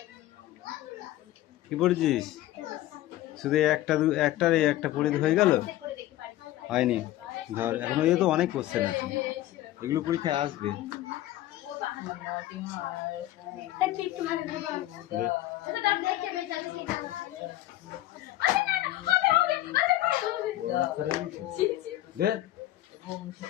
কি পড়েছিস? শুধু একটা পড়ে হয়ে গেল? হয়নি। ধর এখনো তো অনেক কোশ্চেন আছে, এগুলো পরীক্ষায় আসবে।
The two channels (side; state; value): right; quieter; 15.0 dB